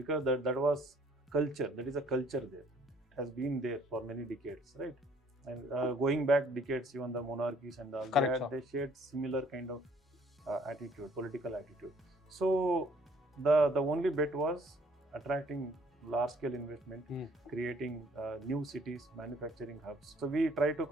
that was culture. That is a culture there. It has been there for many decades, right? And going back decades, even the monarchies and all, they shared similar kind of attitude, political attitude. So the only bet was attracting large-scale investment, creating new cities, manufacturing hubs. So we try to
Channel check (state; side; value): normal; both; correlation 0.60